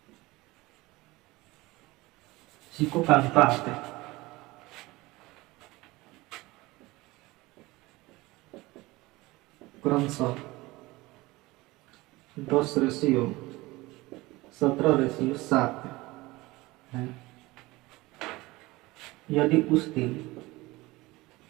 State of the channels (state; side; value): quieter; left; 20.7 dB